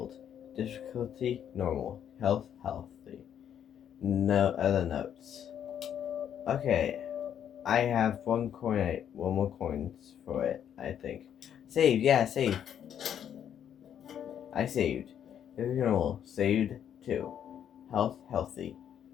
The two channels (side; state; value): right; quieter; 9.3 dB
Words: Difficulty, normal. Health, healthy. No other notes. Okay. I have one more coins for it, I think. Save, yeah, save. I saved. Normal, saved 2. Health, healthy.